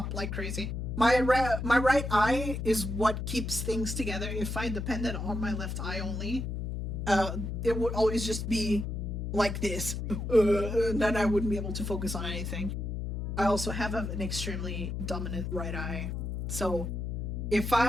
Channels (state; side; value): noise; left; hum, 3 dB below the sound